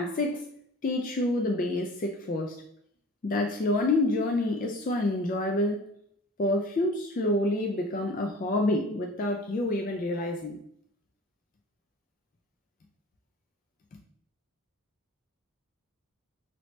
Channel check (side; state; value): both; normal; correlation 0.42